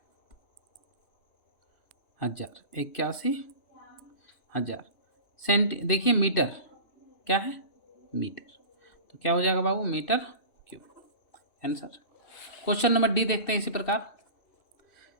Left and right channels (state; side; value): late; right; 2.6 ms